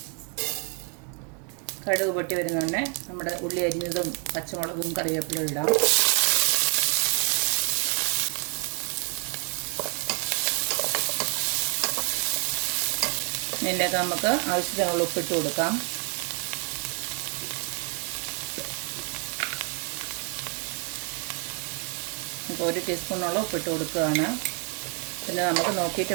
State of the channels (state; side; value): quieter; left; 38.8 dB